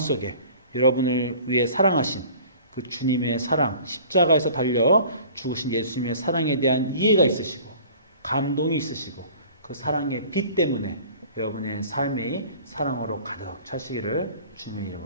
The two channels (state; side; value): inverted; both; correlation -0.47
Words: 여러분을 위해 사랑하신 그 주님의 사랑, 십자가에서 달려 죽으신 예수님의 사랑에 대한 이해가 있으시고 감동이 있으시고 그 사랑의 빛 때문에 여러분의 삶이 사랑으로 가득 차시기를 주님의